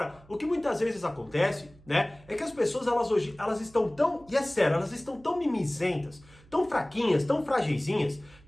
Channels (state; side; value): noise; right; hum, 25 dB below the sound